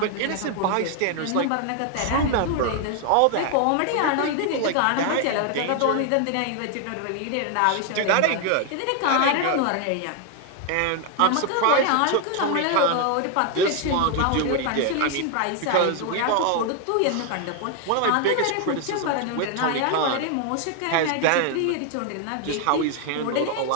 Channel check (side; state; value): both; different; correlation 0.00